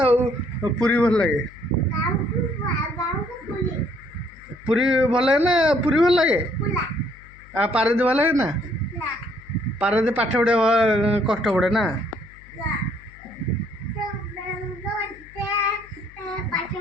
पुरी भल लगे पुरी भल लगे ना पुरी भल लगे पारादीप भल लगे ना पारादीप पाठ पढ़े कष्ट पड़े ना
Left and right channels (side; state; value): left; noise; hum, 23 dB below the sound